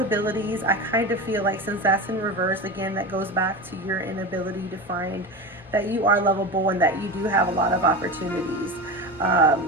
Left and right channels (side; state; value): both; normal; correlation 0.24